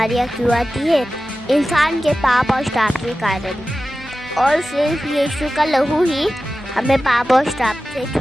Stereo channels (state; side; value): normal; both; correlation 0.94